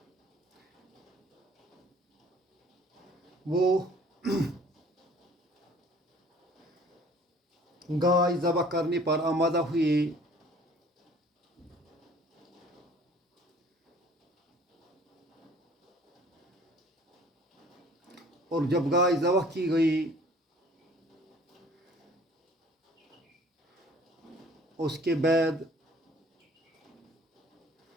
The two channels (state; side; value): normal; both; correlation 0.52